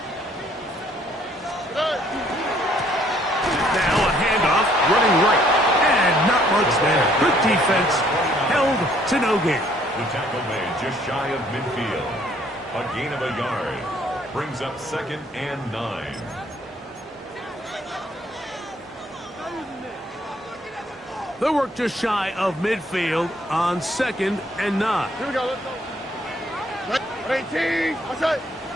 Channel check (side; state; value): both; normal; correlation 0.64